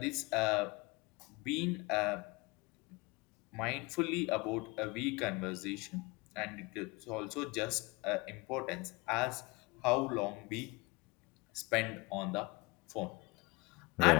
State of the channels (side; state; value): right; quieter; 25.5 dB